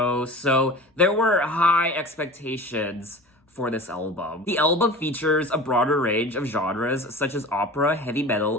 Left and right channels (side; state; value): both; normal; correlation 0.36